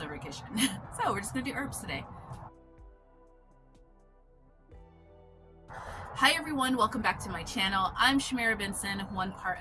kitchen. So we're just going to do herbs today. Hi everyone, welcome back to my channel. I'm Shamira Benson, one part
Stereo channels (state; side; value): identical; both; correlation 1.00